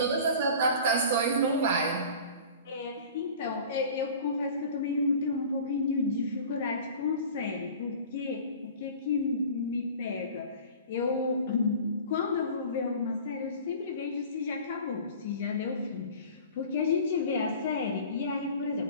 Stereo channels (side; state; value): both; inverted; correlation -0.42